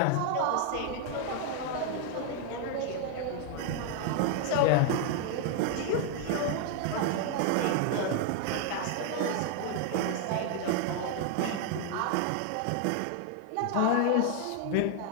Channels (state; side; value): different; both; correlation 0.01